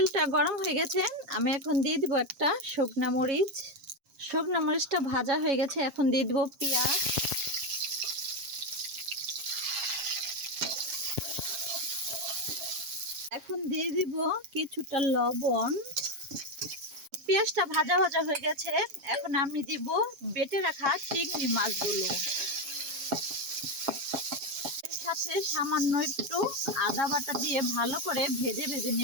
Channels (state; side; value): late; left; 7.4 ms